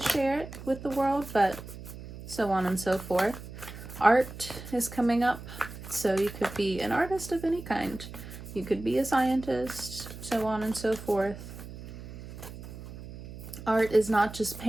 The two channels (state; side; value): noise; right; hum, 13 dB below the sound